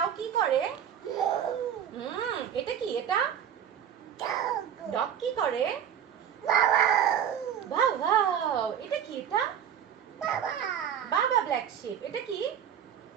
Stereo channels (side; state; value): left; quieter; 9.0 dB